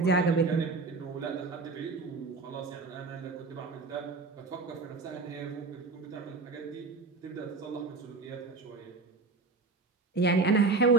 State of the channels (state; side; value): quieter; left; 3.9 dB